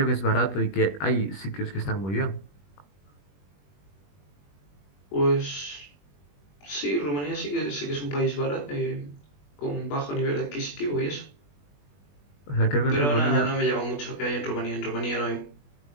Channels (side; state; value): right; late; 21 ms